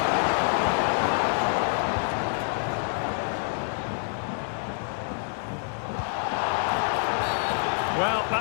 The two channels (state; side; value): silent; right; 56 dB below the other